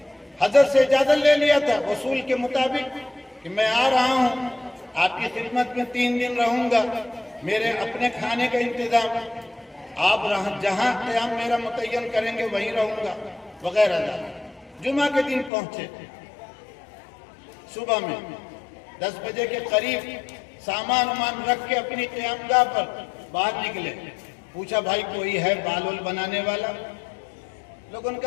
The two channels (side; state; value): right; drops out; at 15.5 s